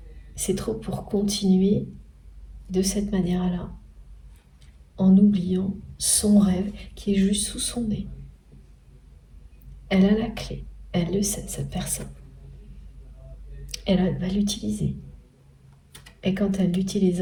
C'est trop pour continuer de cette manière-là, en oubliant son rêve qui est juste sous son nez. Elle a la clé, elle le sait, cette personne. Elle va l'utiliser. Et quand elle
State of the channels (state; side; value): identical; both; correlation 1.00